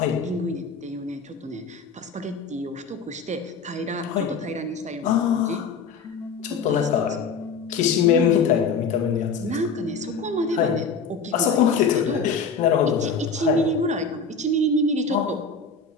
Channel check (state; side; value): quieter; right; 4.9 dB